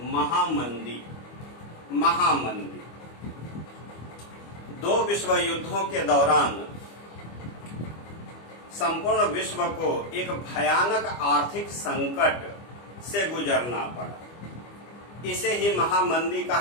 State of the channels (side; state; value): right; late; 25 ms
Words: महामंदी। 2 विश्व युद्धों के दौरान संपूर्ण विश्व को एक भयानक आर्थिक संकट से गुजरना पड़ा। इसे ही महामंदी